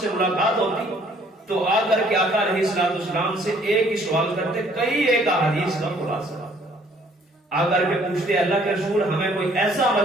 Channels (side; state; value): both; normal; correlation 0.61